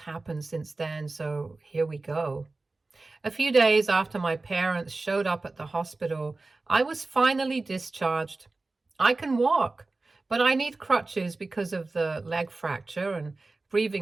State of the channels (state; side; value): quieter; left; 3.4 dB